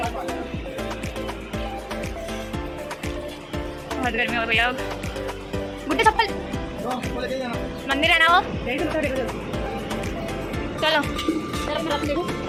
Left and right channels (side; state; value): both; identical; correlation 1.00